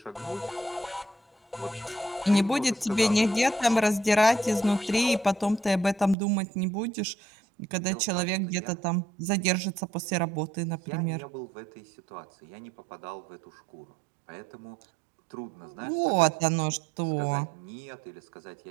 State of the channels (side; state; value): left; drops out; at 6.2 s